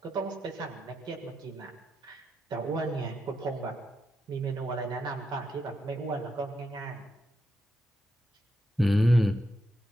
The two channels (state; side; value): normal; both; correlation 0.84